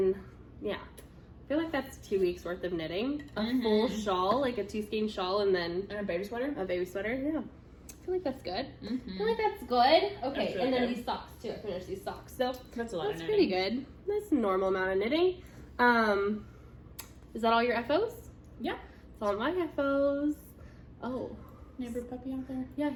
yeah. I feel like that's 2 weeks worth of knitting. A full shawl, like a 2-skein shawl, and then... And a baby sweater? A baby sweater, yeah. I feel like that's good. I feel like that's good. Okay, really and then good. these socks, too. I finished these socks. So That's a lot of that's knitting. pretty good. That's a normal amount of knitting. Is that all your FOs? Yeah. It's all my FOs. Oh. Neighbor puppy out there? Yeah,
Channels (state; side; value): identical; both; correlation 1.00